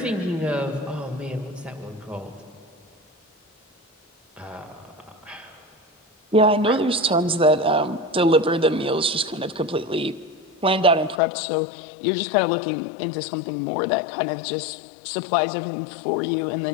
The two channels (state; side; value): drops out; right; at 11.2 s